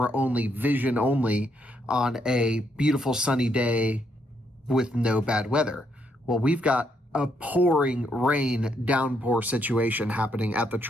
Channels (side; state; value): both; normal; correlation 0.75